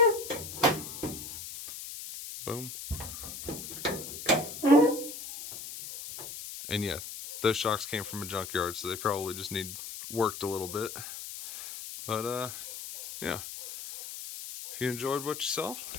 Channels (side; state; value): left; noise; hiss, 9 dB below the sound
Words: Boom. And yeah, those shocks came from a junkyard, so they probably just need worked a little bit. But yeah, if you enjoyed what you saw,